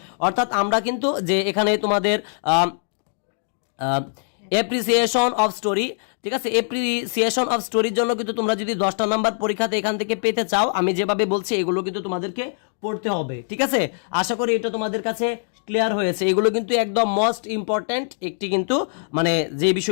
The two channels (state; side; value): silent; right; digital silence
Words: অর্থাৎ আমরা কিন্তু যে এখানে তোমাদের অ্যাপ্রিসিয়েশন অফ স্টোরি, ঠিক আছে, অ্যাপ্রিসিয়েশন অফ স্টোরির জন্য কিন্তু তোমরা যদি 10টা নাম্বার পরীক্ষাতে এখান থেকে পেতে চাও, আমি যেভাবে বলছি এগুলো কিন্তু তোমাদেরকে পড়তে হবে, ঠিক আছে। আশা করি এটা তোমাদের কাছে ক্লিয়ার হয়েছে। এগুলো কিন্তু একদম মোস্ট ইম্পর্টেন্ট একটি কিন্তু মানে যে